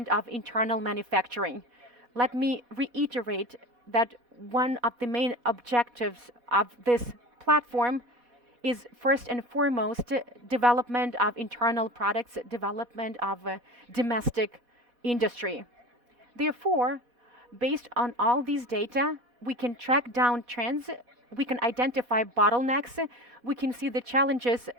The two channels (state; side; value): late; left; 4.1 ms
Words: of internal manufacturing. Let me reiterate that one of the main objectives of this platform is first and foremost development of internal products, development of domestic industry. Therefore, based on all these data, we can track down trends, we can identify bottlenecks, we can see the challenges